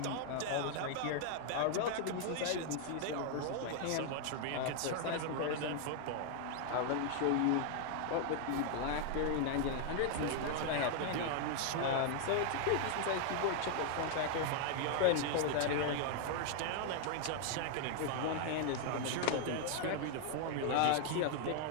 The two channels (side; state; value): both; different; correlation 0.00